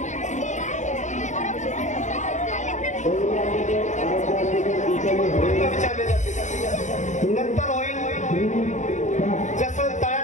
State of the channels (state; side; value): late; right; 0.35 ms